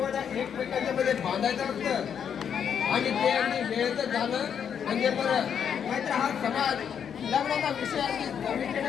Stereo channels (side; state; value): right; quieter; 7.9 dB